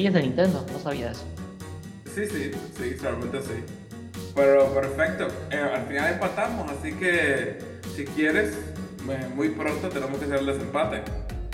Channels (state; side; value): identical; both; correlation 1.00